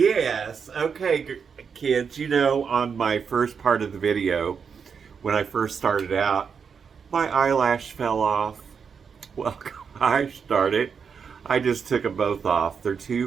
okay, kids, on my first part of the video, when I first started out, my eyelash fell off. Well, gosh darn it. I just took them both off. They're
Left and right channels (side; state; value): left; quieter; 6.3 dB